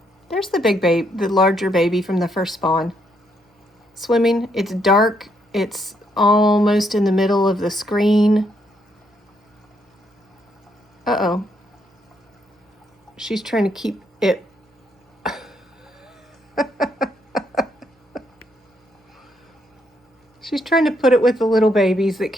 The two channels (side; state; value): both; normal; correlation 0.74